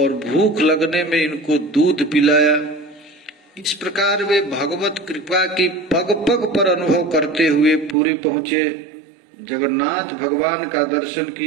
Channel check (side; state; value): left; drops out; at 8.0 s